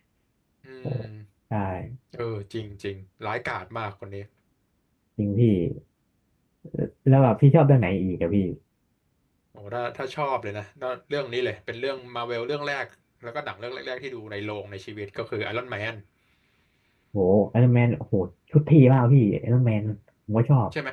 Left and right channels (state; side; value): identical; both; correlation 1.00